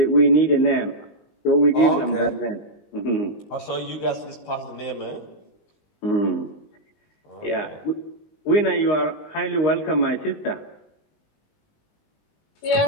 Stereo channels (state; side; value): late; right; 19 ms